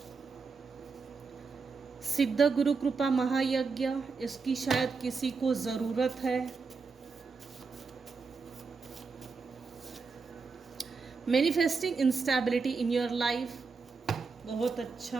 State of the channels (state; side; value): quieter; left; 4.7 dB